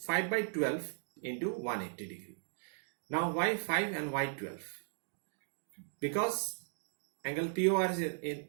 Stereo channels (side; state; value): left; silent; digital silence